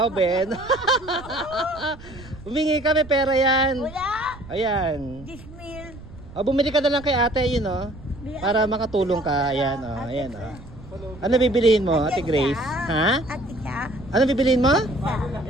Ben. Humingi ka, may pera yan. Wala. Ayan. Dismil. O, bumili ka na lang kay ate, yun, oh. Para makatulong ka. Ayan, oh. Ayan, oh. Ano bibilihin mo, Ate Grace? Ha? Ate ka? Ano bibilihin mo?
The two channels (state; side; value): noise; right; rumble, 18 dB below the sound